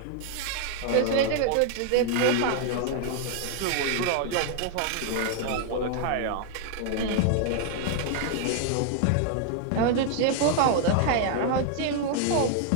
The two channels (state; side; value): different; both; correlation 0.00